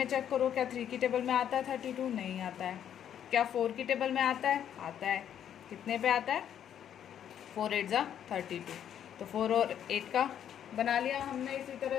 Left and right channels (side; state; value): right; quieter; 9.6 dB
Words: चेक करो, क्या 3 की टेबल में आता है 32, नहीं आता है। क्या 4 की टेबल में आता है, आता है। कितने पे आता है, 4 8 जा 32। तो 4 और 8 का बना लिया हमने इसी तरह